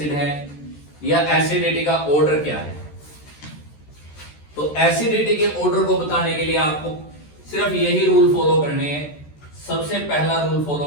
है, या एसिडिटी का ऑर्डर क्या है। तो एसिडिटी के ऑर्डर को बताने के लिए आपको सिर्फ यही रूल फॉलो करने हैं। सबसे पहला रूल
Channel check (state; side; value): late; right; 14 ms